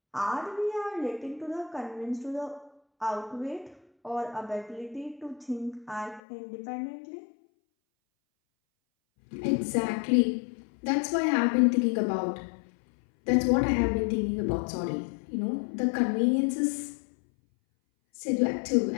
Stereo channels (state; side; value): drops out; right; at 6.2 s